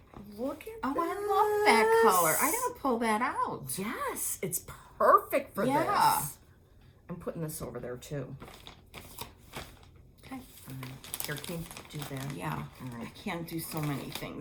Look at Oh, this. I love that color. I gotta pull that out. Yes, it's perfect for Yeah. this. I'm putting this over there too. Okay. Here, can you do that? Yeah. All I right. can't do so many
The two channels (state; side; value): identical; both; correlation 1.00